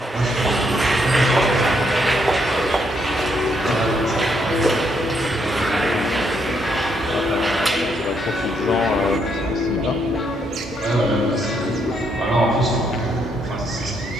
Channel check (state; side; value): normal; both; correlation 0.75